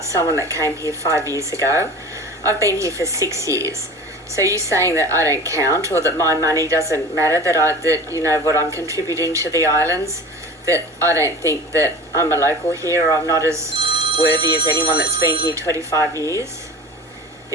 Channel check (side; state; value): both; normal; correlation 0.37